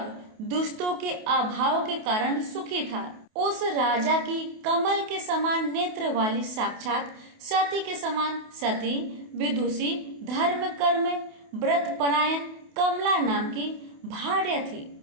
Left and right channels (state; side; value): late; left; 28 ms